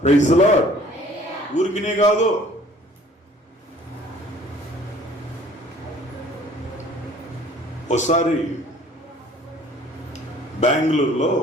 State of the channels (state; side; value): normal; both; correlation 0.53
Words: Praise lord. ఊరికినే కాదు. ఒకసారి బెంగళూరులో